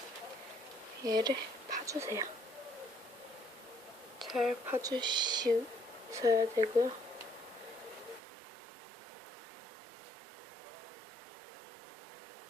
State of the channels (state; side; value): drops out; left; at 8.2 s